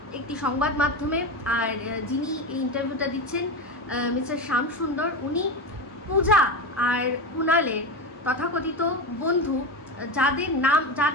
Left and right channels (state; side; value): normal; both; correlation 0.20